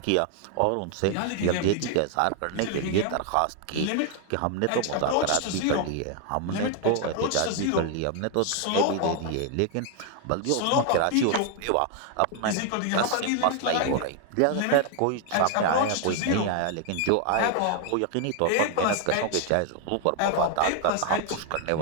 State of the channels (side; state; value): both; different; correlation 0.00